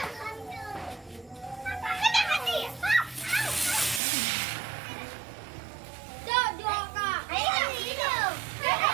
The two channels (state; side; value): drops out; left; at 4.0 s